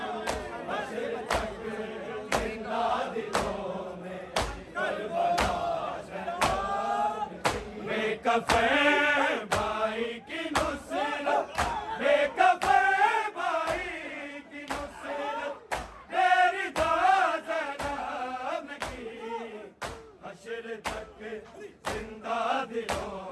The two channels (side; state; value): both; identical; correlation 1.00